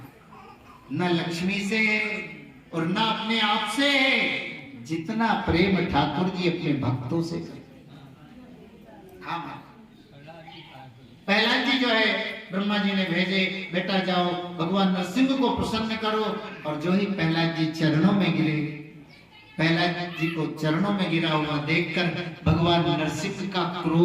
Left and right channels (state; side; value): identical; both; correlation 1.00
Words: न लक्ष्मी से और न अपने आप से, जितना प्रेम ठाकुर जी अपने भक्तों से। हाँ प्रहलाद जी जो है ब्रह्मा जी ने भेजे, बेटा जाओ भगवान नरसिंह को प्रसन्न करो। और जो ही प्रहलाद जी चरणों में गिरे, प्रहलाद जी को चरणों में गिरा हुआ देखकर भगवान नरसिंह का